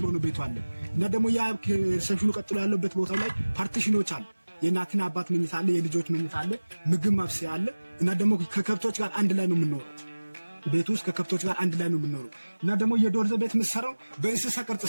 ነው ቤቱ አለ እና ደግሞ ያ ከሪሴፕሽኑ ቀጥሎ ያለበት ቦታ ላይ ፓርቲሽኖች አሉ። የእናትና አባት መኝታ አለ፣ የልጆች መኝታ አለ፣ ምግብ ማብሰያ አለ እና ደግሞ ከከብቶች ጋር አንድ ላይ ነው የምንኖረው። ቤቱ ውስጥ ከከብቶች ጋር አንድ ላይ ነው የምንኖረው እና ደግሞ የዶርዜ ቤት የምትሰራው በእንስሳ ቅርጽ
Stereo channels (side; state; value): both; inverted; correlation -1.00